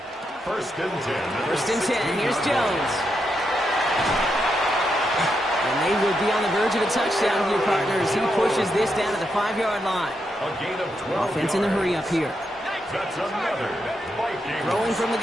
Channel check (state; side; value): normal; both; correlation 0.83